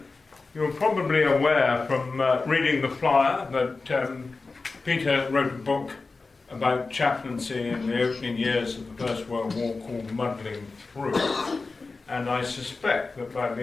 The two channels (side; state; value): right; quieter; 3.9 dB